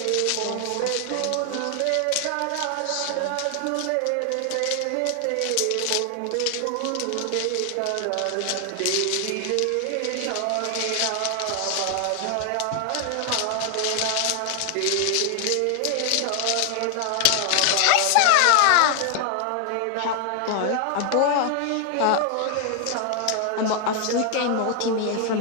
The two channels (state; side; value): different; both; correlation 0.00